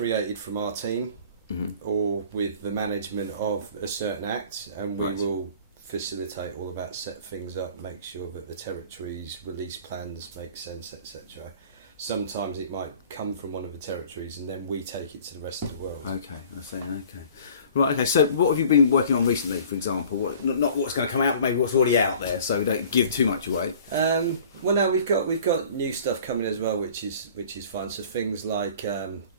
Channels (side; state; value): both; inverted; correlation -0.48